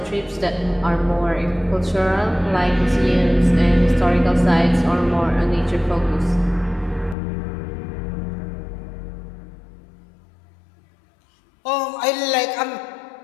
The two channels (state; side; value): drops out; right; at 7.2 s